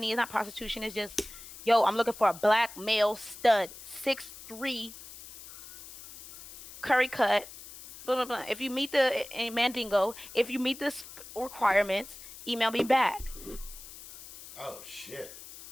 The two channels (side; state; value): left; noise; hiss, 16 dB below the sound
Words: It's not prostitution. It's just, yo, I'm looking for a black male stud, 6'3", curry cut, blah blah blah. If you meet the Mandingo, if you meet the requirements, email me back. Oh shit.